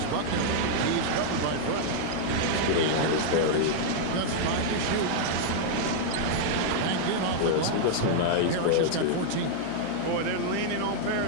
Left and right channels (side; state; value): both; different; correlation -0.01